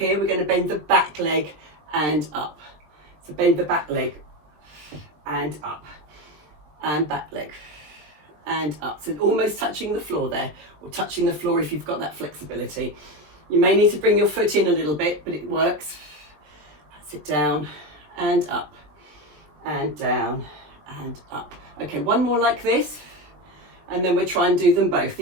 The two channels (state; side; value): late; left; 20 ms